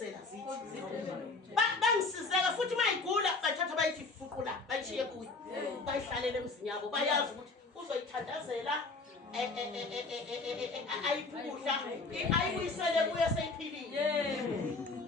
zithi. Bangisizeka futhi mayigula bathatha bayithi fuqula bayishiye kuyi. Bayihlalele emzini yabo bayazi ukuthi uzoyithandazela ayiphuhla ayibuyisele kuye seyiphilile.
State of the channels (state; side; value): quieter; right; 3.7 dB